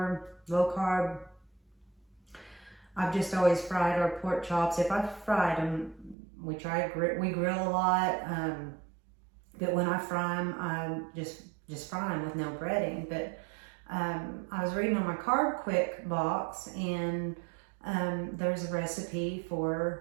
low carb, I've just always fried our pork chops. If I've fried them, we grill a lot, but when I fry them, I just fry them with no breading. But I was reading on my Carb Quick box, and there's a recipe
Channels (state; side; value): drops out; left; at 6.2 s